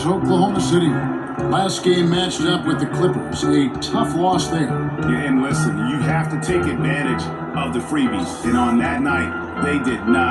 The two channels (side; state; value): both; identical; correlation 1.00